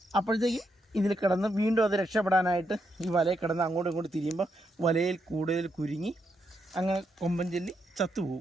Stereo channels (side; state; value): both; normal; correlation 0.81